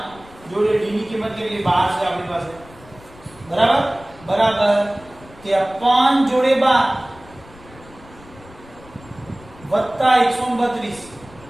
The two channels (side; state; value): left; noise; rumble, 22 dB below the sound